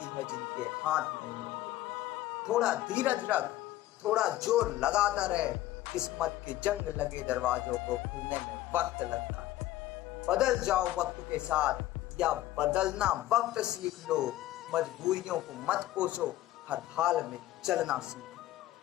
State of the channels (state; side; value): quieter; right; 15.0 dB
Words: है जिनके हाथ नहीं होते। थोड़ा धीरज रख, थोड़ा जोर लगाता रहे, किस्मत के जंग लगे दरवाजों को खुलने में वक्त लगता है। बदल जाओ वक्त के साथ, या बदलना वक्त सीख लो। मजबूरियों को मत कोसो, हर हाल में चलना